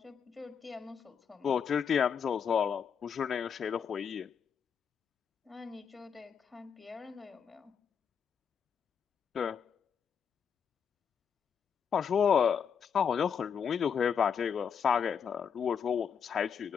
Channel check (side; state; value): right; quieter; 7.2 dB